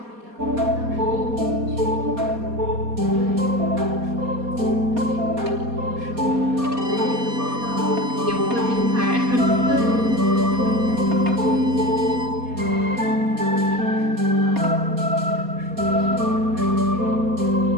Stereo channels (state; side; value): late; left; 4.2 ms